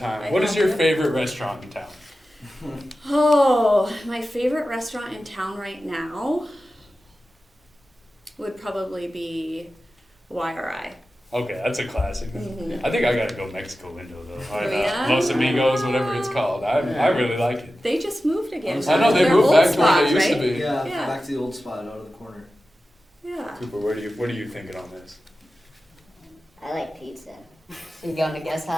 What is your favorite restaurant in town? Oh, my favorite restaurant in town right now would probably be YRI. Okay, that's a classic. Mm-hmm. I think I gotta go Mexico window though. Yeah? Los Amigos, whatever it's called. I really like it. They just moved again. I know they moved back to where they used to be. Yeah, back to the old spot out of the corner. Yeah. Kooper, what are you thinking on this? I like pizza. You going to guess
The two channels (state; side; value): normal; both; correlation 0.94